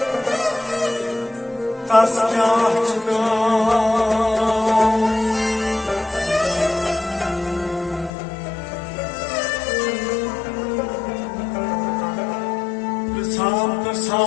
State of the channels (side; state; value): right; drops out; at 8.1 s